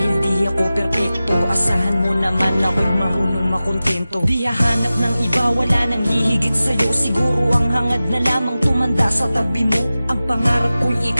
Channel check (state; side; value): inverted; both; correlation -0.96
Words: di ako perpekto. Asahan mo naman ako'y marunong makontento. Di hahanap ng iba, wala nang hihigit sa'yo. Siguro ang hangad na lamang tumanda sa tabi mo. Ang pangarap ko'y